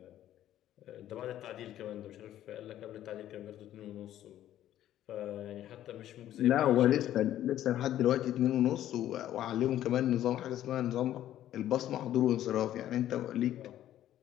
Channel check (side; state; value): right; quieter; 12.4 dB